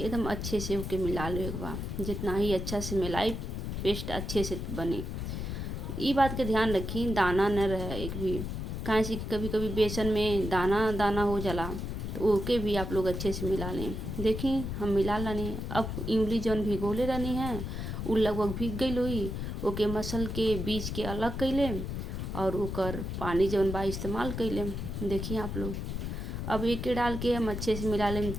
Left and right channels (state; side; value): noise; left; rumble, 4 dB below the sound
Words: अच्छे से होके मिला ले एक बार। जितना ही अच्छा से मिलाई पेस्ट अच्छे से बने। ये बात के ध्यान रखी दाना न रहे एक भी, काहे से कभी कभी बेसन में दाना दाना हो जाला, तो ओके भी आप लोग अच्छे से मिला लें। देखी हम मिला लानी। अब इमली जौन भिगोले रहनी है उ लगभग भीग गई हुई, ओके मसल के बीज के अलग कैले और ओकर पानी जौन बा इस्तेमाल कैले। देखिए आप लोग अब एक डाल के हम अच्छे से मिला लें